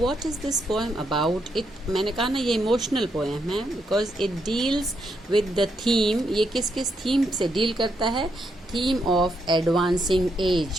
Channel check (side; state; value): both; normal; correlation 0.79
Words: is this poem about. It मैंने कहा ना, ये इमोशनल पोएम है because it deals with the theme. ये किस किस थीम से डील करता है? थीम ऑफ एडवांसिंग